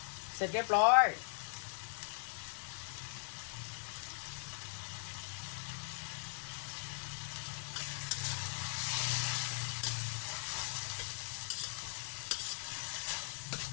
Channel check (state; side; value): silent; right; 51 dB below the other